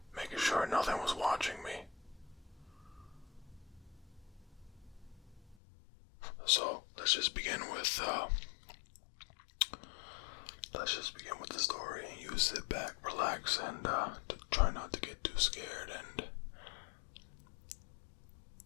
making sure nothing was watching me. So let's just begin with the story. You sit back, relax, and try not to get too scared, and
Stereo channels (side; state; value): right; drops out; at 5.6 s